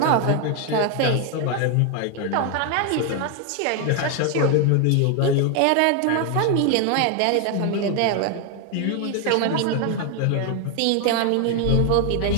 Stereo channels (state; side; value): different; both; correlation 0.01